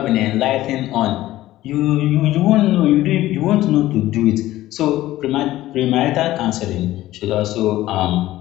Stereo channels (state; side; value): quieter; right; 15.5 dB